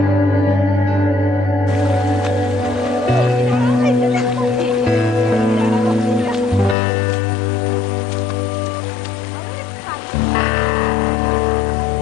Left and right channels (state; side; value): drops out; right; at 6.8 s